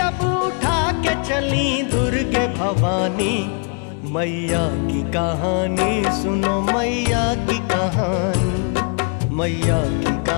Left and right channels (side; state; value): right; quieter; 38.4 dB